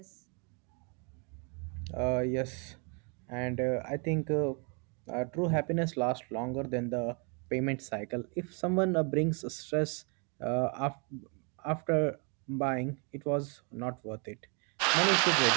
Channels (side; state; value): left; quieter; 35.8 dB